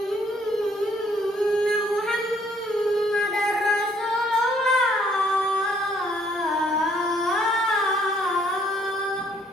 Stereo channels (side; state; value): both; normal; correlation 0.65